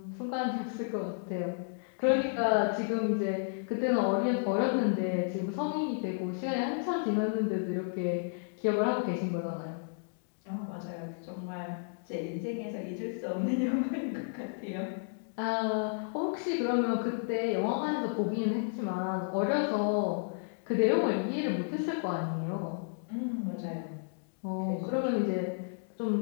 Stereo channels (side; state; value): right; silent; digital silence